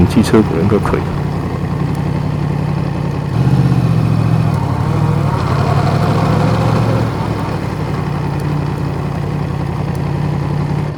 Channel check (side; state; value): both; identical; correlation 1.00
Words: 机车轨应该可以。